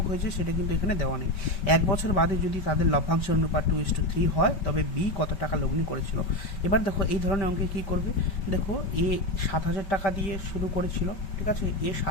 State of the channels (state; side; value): late; right; 5.2 ms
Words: হয়েছে সেটা কিন্তু এখানে দেওয়া নেই। 1 বছর বাদে যদি তাদের লভ্যাংশের অনুপাত 2:3 হয়, তবে বি কত টাকা লগ্নি করেছিল। এবার দেখো এই ধরনের অঙ্কে কী করবে। দেখো এ 7,000 টাকা দিয়ে শুরু করেছিল, ঠিক আছে। এ